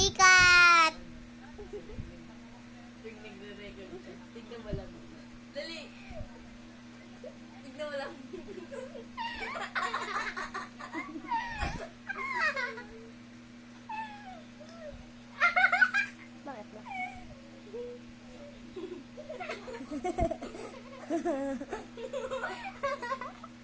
Tignan mo lang. Dali. Tignan mo lang. Bakit ba?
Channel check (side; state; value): both; identical; correlation 1.00